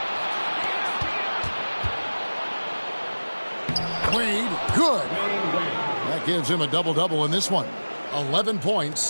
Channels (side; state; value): both; inverted; correlation -1.00